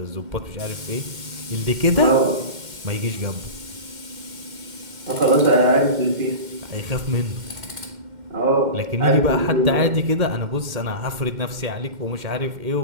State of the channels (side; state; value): left; late; 2.1 ms